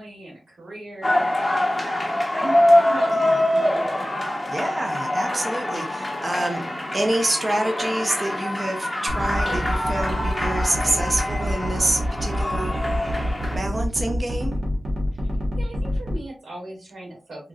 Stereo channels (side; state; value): both; normal; correlation 0.96